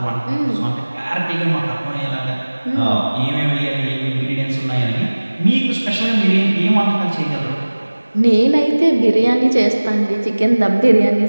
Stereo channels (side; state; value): both; inverted; correlation -1.00